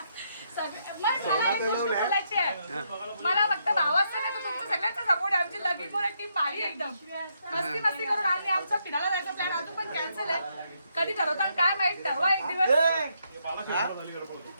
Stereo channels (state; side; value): inverted; both; correlation -0.77